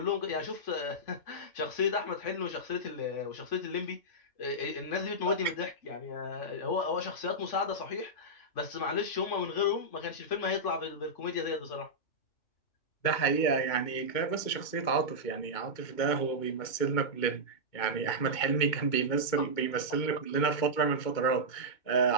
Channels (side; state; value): right; late; 2.2 ms